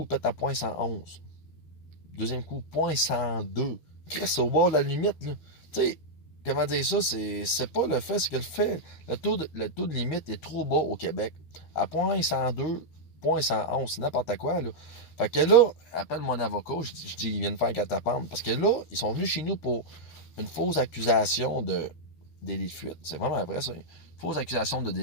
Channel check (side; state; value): right; late; 13 ms